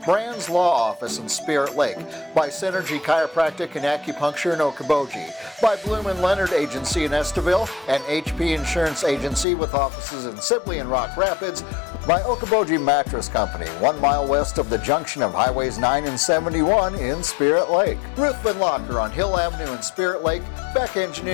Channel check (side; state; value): right; drops out; at 9.5 s